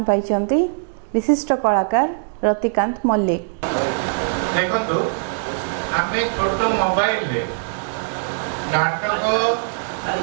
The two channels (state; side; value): silent; left; 65 dB below the other